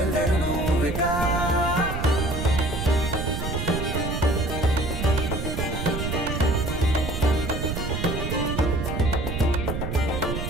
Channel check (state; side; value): noise; right; rumble, 4 dB below the sound